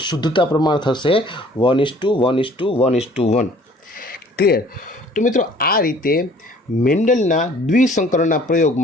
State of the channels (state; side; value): normal; both; correlation 0.54